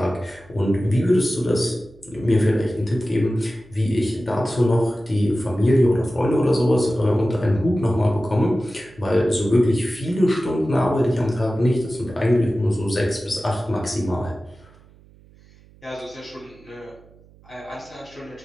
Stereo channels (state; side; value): noise; right; hum, 26 dB below the sound